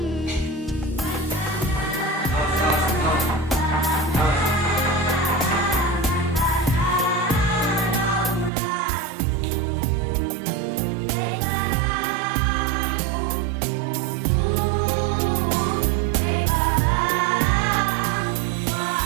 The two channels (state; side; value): drops out; left; at 8.5 s